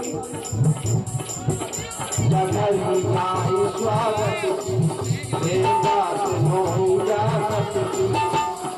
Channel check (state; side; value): identical; both; correlation 1.00